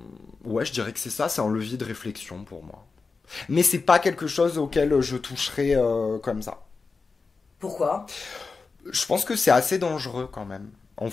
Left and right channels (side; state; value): right; quieter; 4.4 dB